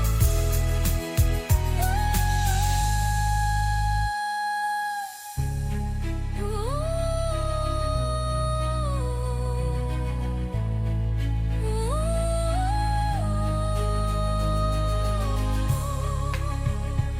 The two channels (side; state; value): both; identical; correlation 1.00